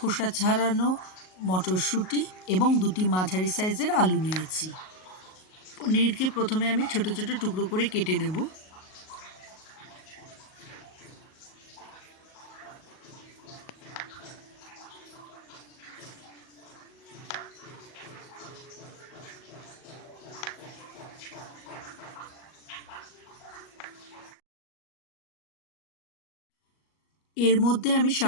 ছাড়ানো মটরশুঁটি এবং 2টি মাঝারি সাইজের আলু নিয়েছি। পনিরকে প্রথমে আমি ছোট ছোট টুকরো করে কেটে নেব। এর মধ্যে আমি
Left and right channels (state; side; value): late; right; 38 ms